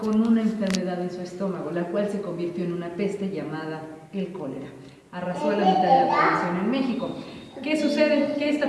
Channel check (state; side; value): identical; both; correlation 1.00